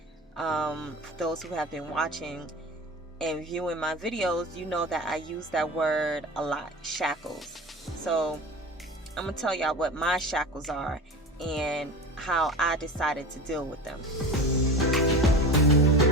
For those who have been watching and viewing my videos, you know that I use that word a lot, shackles. So I'm going to tell y'all what my shackles are and how I decided to deal with them.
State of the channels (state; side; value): normal; both; correlation 0.32